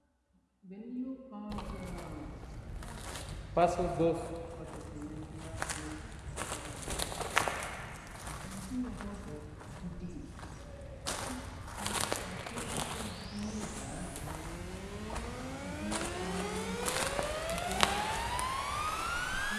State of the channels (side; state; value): both; identical; correlation 1.00